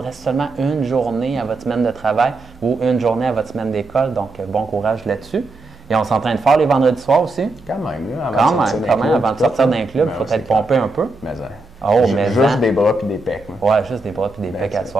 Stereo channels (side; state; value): left; quieter; 3.0 dB